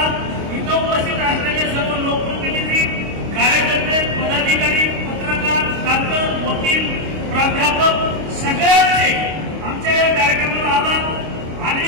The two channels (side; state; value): left; late; 26 ms